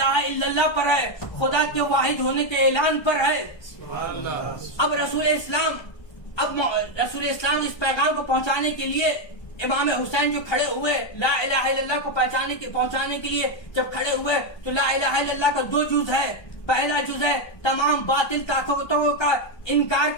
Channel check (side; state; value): right; late; 1.3 ms